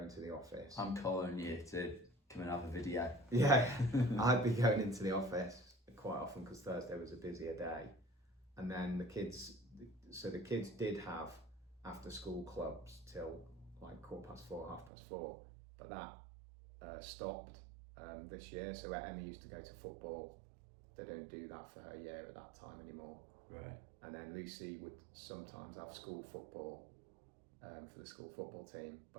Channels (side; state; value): left; drops out; at 14.9 s